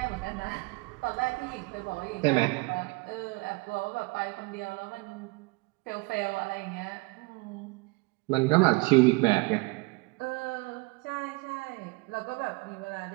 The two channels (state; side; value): quieter; left; 26.4 dB